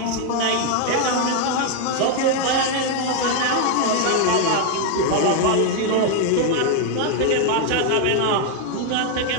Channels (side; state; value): both; different; correlation 0.00